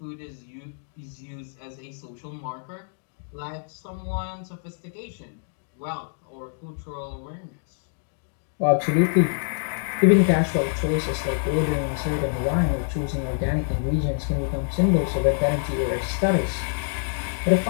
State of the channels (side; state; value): right; silent; digital silence